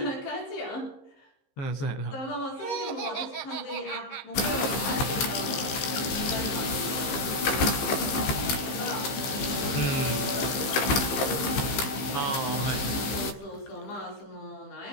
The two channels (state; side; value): late; right; 15 ms